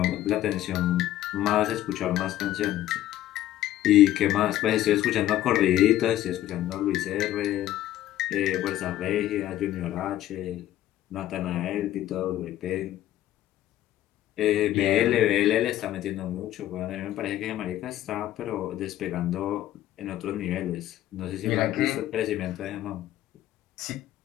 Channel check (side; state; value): right; quieter; 13.4 dB